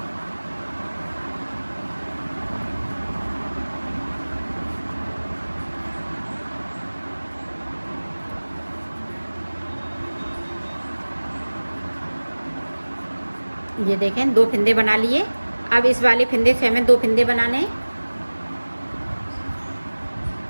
ये देखें 2 फिंदे बना लिए। अब इस वाले फिंदे से हमें 2 फिंदे बनाने हैं।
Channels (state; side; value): inverted; both; correlation -1.00